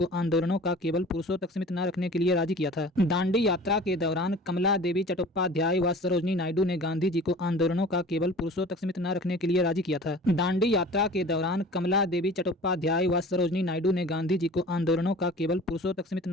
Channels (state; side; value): normal; both; correlation 0.43